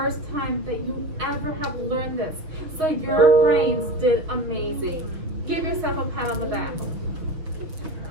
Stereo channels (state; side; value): late; left; 6.5 ms